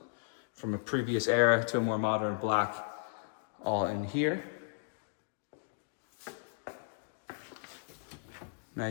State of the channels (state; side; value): silent; right; digital silence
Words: from a previous era to a more modern black, all in here.